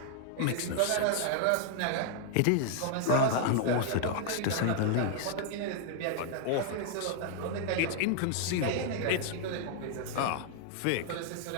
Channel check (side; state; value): both; different; correlation 0.00